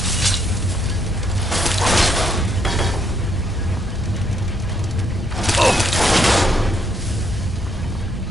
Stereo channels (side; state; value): both; normal; correlation 0.73